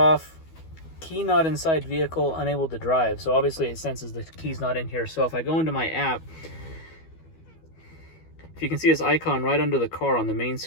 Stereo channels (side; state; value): right; late; 12 ms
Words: key not inside vehicle, unable to drive. So obviously it senses the key's not in here. So if I go into my app, if you can see this icon right under the car on the main